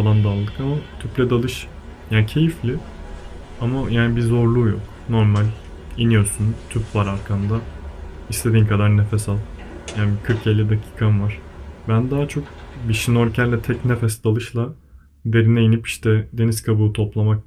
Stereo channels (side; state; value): both; identical; correlation 1.00